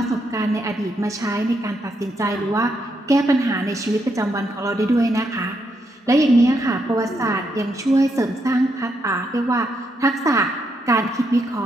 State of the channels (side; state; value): both; normal; correlation 0.79